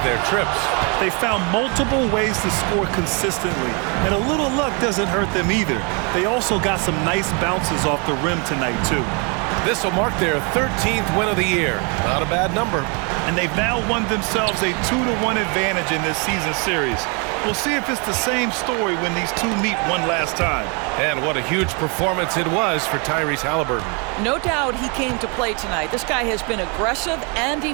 their trips. They found multiple ways to score consistently, and a little luck doesn't hurt them either. They also got some nice bounces off the rim tonight, too. This will mark their 13th win of the year. Not a bad number. And they've now won themselves a 2-1 advantage in this season series. We'll see if it's the same story when these two meet one last time. And what a huge performance it was for Tyrese Haliburton. No doubt he came to play tonight. This guy has been aggressive and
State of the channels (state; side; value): quieter; left; 33.8 dB